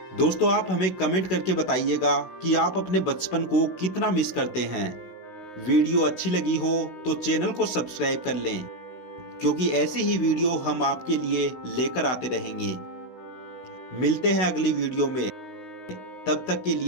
दोस्तों आप हमें कमेंट करके बताइएगा कि आप अपने बचपन को कितना मिस करते हैं। वीडियो अच्छी लगी हो तो चैनल को सब्सक्राइब कर लें, क्योंकि ऐसे ही वीडियो हम आपके लिए लेकर आते रहेंगे। मिलते हैं अगली वीडियो में, तब तक के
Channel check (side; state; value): right; late; 16 ms